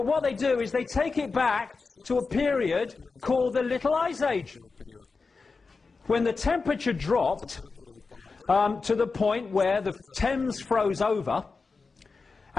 what they do is they take it back to a period called the Little Ice Age, when the temperature dropped to the point where the Thames froze over,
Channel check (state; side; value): quieter; right; 4.4 dB